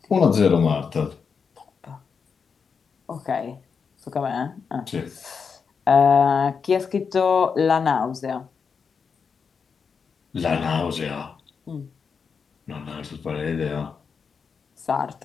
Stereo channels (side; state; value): right; quieter; 5.9 dB